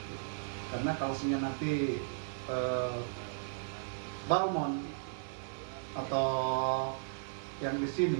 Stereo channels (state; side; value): silent; left; 54 dB below the other